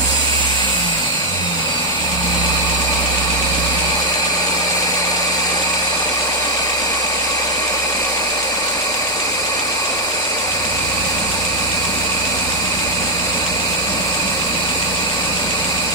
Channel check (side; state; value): left; noise; rumble, 29 dB below the sound